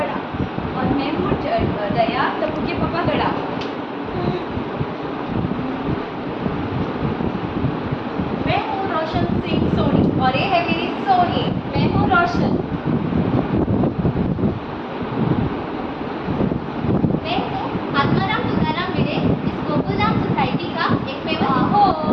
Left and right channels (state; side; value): identical; both; correlation 1.00